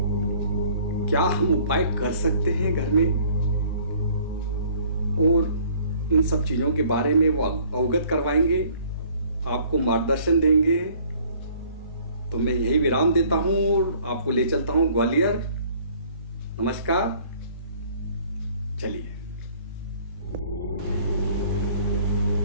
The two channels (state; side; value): inverted; both; correlation -0.56